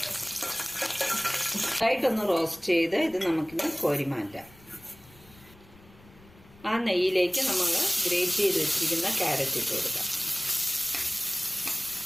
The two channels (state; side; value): noise; left; rumble, 25 dB below the sound